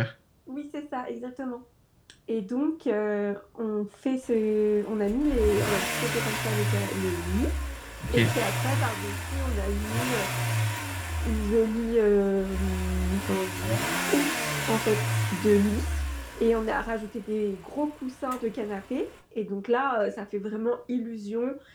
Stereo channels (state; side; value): identical; both; correlation 1.00